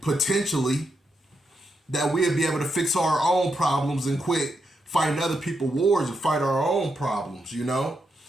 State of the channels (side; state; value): both; normal; correlation 0.83